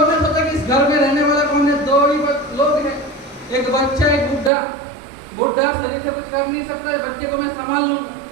ने सोचा कि इस घर में रहने वाला कौन है, दो ही लोग हैं, एक बच्चा एक बुढ़ा। बुढ़ा शरीर से कुछ कर नहीं सकता, बच्चे को मैं संभाल लूंगा।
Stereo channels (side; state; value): left; drops out; at 4.5 s